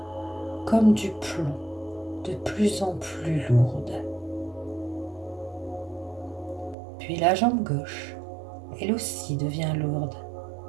comme du plomb, de plus en plus lourde. Puis la jambe gauche, elle aussi devient lourde,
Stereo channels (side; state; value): left; drops out; at 6.8 s